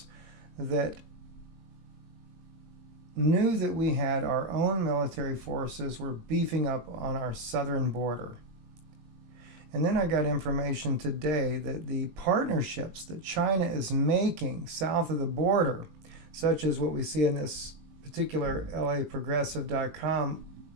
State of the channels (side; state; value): left; late; 20 ms